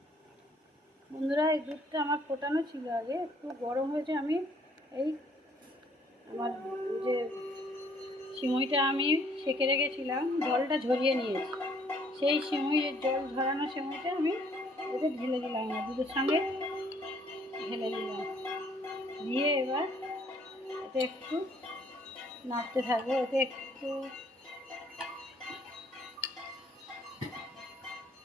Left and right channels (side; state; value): both; normal; correlation 0.63